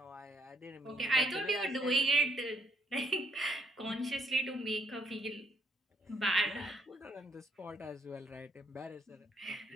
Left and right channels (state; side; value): normal; both; correlation 0.69